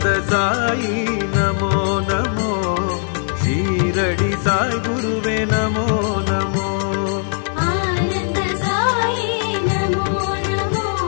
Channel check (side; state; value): right; silent; 66 dB below the other